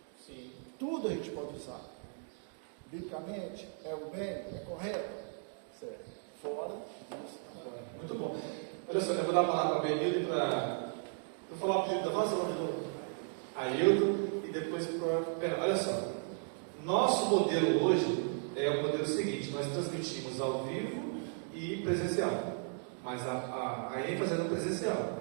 Sim. Tudo a gente pode usar. Biblicamente, é o bem, é correto? Certo. Fora disso. Muito bom. Olha só, eu vou dar a palavra para a Benildo e para... Vou falar o apelido da nossa nome do Ailton e depois para... Olha só. Nosso modelo hoje é o modelo seguinte: nós transmitimos ao vivo e presencial. Mas a ênfase é no presencial.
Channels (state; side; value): silent; left; 54 dB below the other